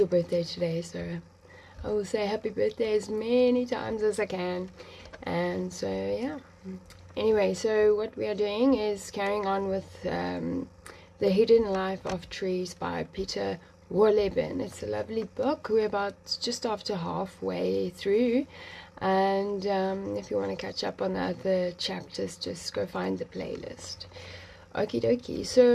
birthday today, so I will say happy birthday as many times as I can. And so yeah. Anyway, so what we are doing is carrying on with The Hidden Life of Trees by Peter Wohlleben. It's a lovely book. We're about just after halfway through. And if you want to catch up on the other chapters, just go find the playlist. Okie dokie.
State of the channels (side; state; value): both; identical; correlation 1.00